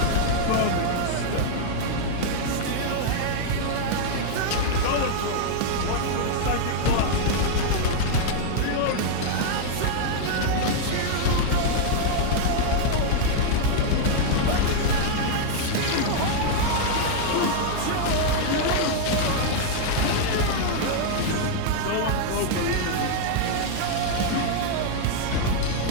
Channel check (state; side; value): different; both; correlation -0.01